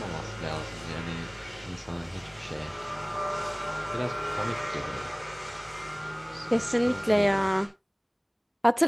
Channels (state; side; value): identical; both; correlation 1.00